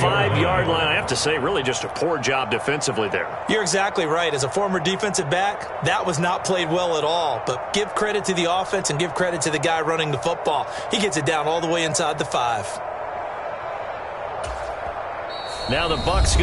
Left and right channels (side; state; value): both; identical; correlation 1.00